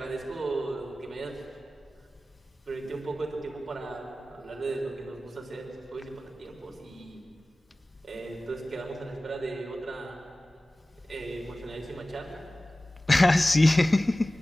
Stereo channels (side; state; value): both; normal; correlation 0.96